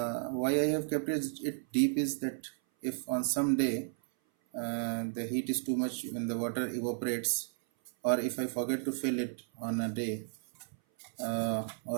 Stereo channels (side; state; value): left; silent; 55 dB below the other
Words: I have kept it deep is that if on some day the heat is too much when the water evaporates, or if I forget to fill it on a day,